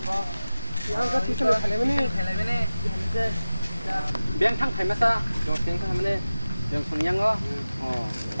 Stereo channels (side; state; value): both; inverted; correlation -0.96